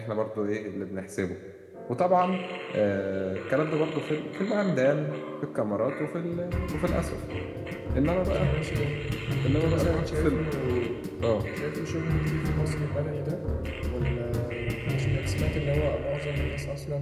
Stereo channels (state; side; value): identical; both; correlation 1.00